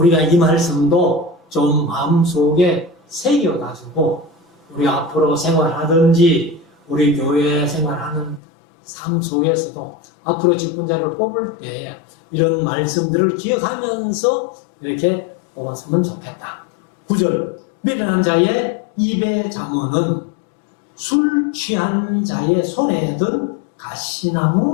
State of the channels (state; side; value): drops out; right; at 8.4 s